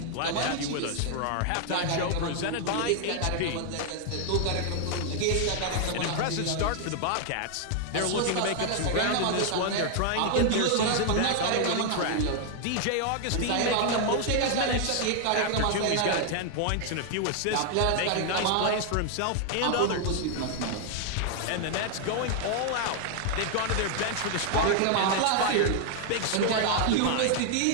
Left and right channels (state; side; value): different; both; correlation 0.00